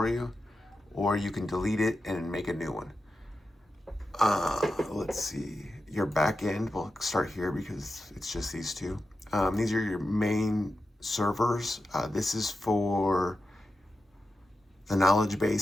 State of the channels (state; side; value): normal; both; correlation 0.91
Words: you, or you can delete it and make a new one. Let's see, your backend, we'll start here because it's just these two. These are your main servers. This is for the knowledge